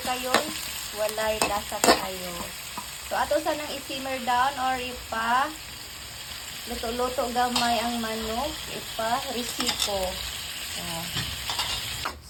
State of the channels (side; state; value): both; identical; correlation 1.00